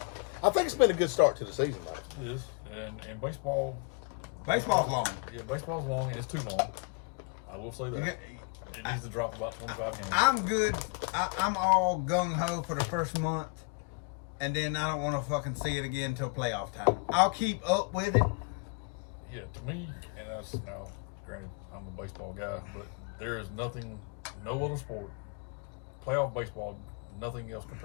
I think it's been a good start to the season, though. It is. And baseball. Baseball's long. Yeah, baseball's long and it's too long. I will say that. You got- It needs to drop about 25 games. I'm good. I'm all gung ho for the first month, and then I don't want to fucking see it again until playoff time. I'll keep up with it. Yeah, to me, and that's now, granted, I'm a baseball guy, but there is nothing, no other sport, playoff baseball, nothing else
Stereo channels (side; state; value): right; quieter; 33.1 dB